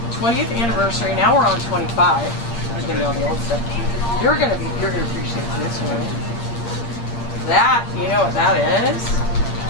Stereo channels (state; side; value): late; right; 8.6 ms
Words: 20th anniversary. Now we're on 25. I'm getting all the old stuff. You're gonna appreciate this one. That, you know what that is?